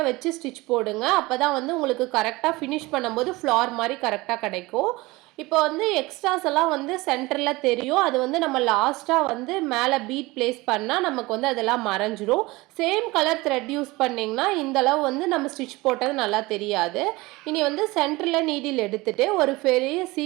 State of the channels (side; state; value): left; quieter; 21.6 dB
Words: வச்சு ஸ்டிச் போடுங்க. அப்போ தான் வந்து உங்களுக்கு கரெக்டாக ஃபினிஷ் பண்ணும்போது ஃப்ளார் மாதிரி கரெக்டாக கிடைக்கும். இப்போ வந்து எக்ஸ்ட்ராஸ் எல்லாம் வந்து சென்டரில் தெரியும். அது வந்து நம்ம லாஸ்ட்டாக வந்து மேலே பீட் பிளேஸ் பண்ணால் நமக்கு வந்து அதெல்லாம் மறைஞ்சிரும். சேம் கலர் த்ரெட் யூஸ் பண்ணிங்கன்னா இந்தளவு வந்து நம்ம ஸ்டிச் போட்டது நல்லா தெரியாது. இனி வந்து சென்டரில் நீடில் எடுத்துகிட்டு ஒரு பெரிய